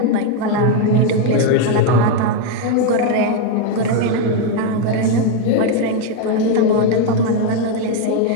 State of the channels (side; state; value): both; different; correlation 0.01